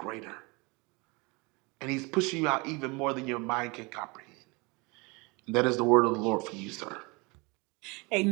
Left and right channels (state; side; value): quieter; left; 27.3 dB